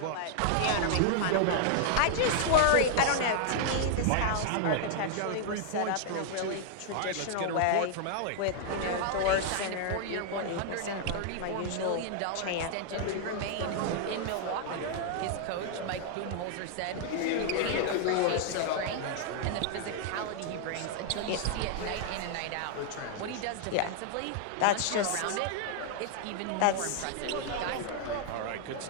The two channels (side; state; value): both; different; correlation -0.01